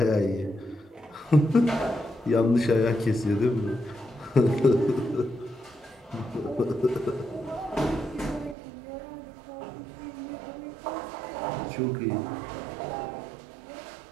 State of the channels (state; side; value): drops out; left; at 8.6 s